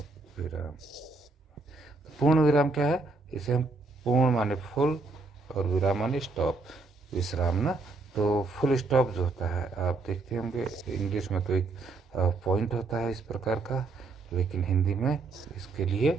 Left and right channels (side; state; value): left; quieter; 3.6 dB